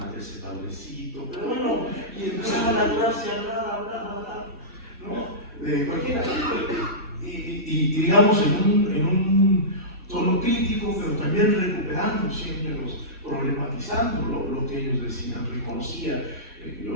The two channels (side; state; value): both; normal; correlation -0.17